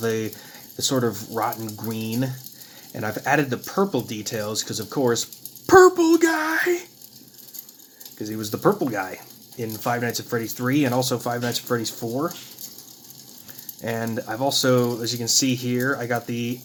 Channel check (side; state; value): both; identical; correlation 1.00